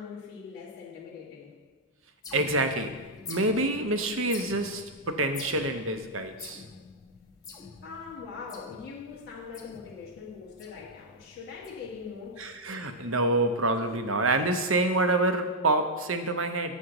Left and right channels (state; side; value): normal; both; correlation -0.04